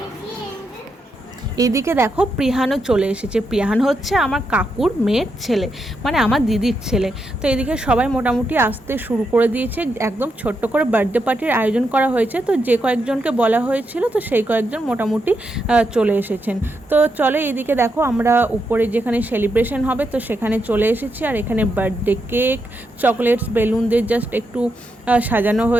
এদিকে দেখো প্রিহানও চলে এসেছে। প্রিহান হচ্ছে আমার কাকুর মেয়ের ছেলে, মানে আমার দিদির ছেলে। তো এদিকে সবাই মোটামুটি আসতে শুরু করে দিয়েছে। একদম ছোট্ট করে বার্থডে পার্টির আয়োজন করা হয়েছে। তো যে কয়েকজনকে বলা হয়েছিল, তো সেই কয়েকজন মোটামুটি চলে এসেছেন। তো চলে এদিকে দেখো আমরা উপরে যেখানে সেলিব্রেশন হবে, তো সেখানে চলে এসেছি। আর এখানে বার্থডে কেক, চকলেটস, বেলুন দিয়ে জাস্ট একটু সাজানো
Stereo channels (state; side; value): normal; both; correlation 0.83